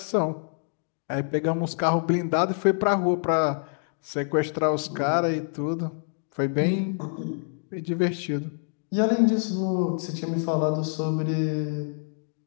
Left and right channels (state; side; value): silent; right; 61 dB below the other